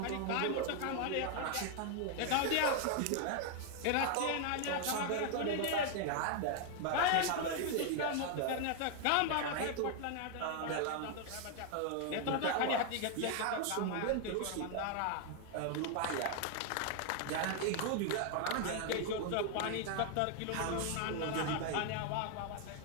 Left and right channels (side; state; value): both; different; correlation 0.00